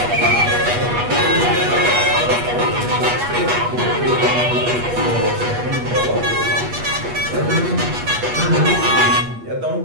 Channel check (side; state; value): left; late; 8.3 ms